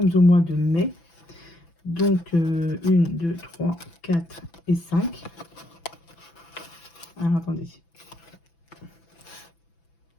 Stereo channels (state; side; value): late; right; 6.0 ms